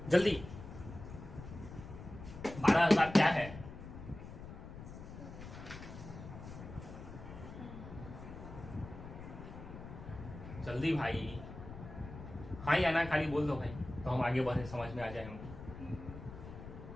जल्दी, 12,000 क्या है, जल्दी भाई, हाँ या ना खाली बोल दो भाई, तो हम आगे बढ़े, समझ में आ जाए हमको।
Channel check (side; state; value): left; noise; rumble, 12 dB below the sound